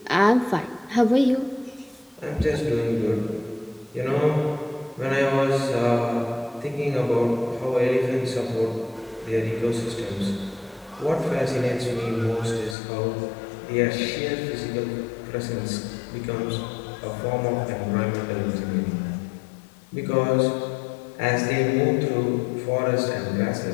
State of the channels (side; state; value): right; drops out; at 12.8 s